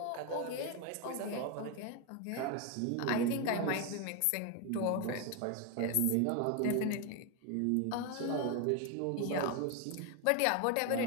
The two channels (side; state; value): both; different; correlation 0.01